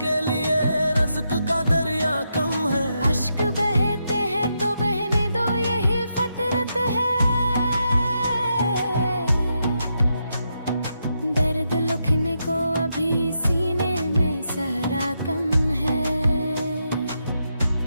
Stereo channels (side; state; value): both; inverted; correlation -0.83